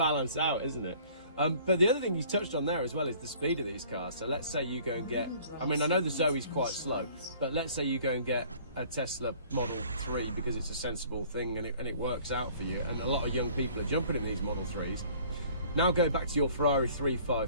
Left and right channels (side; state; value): both; inverted; correlation -0.53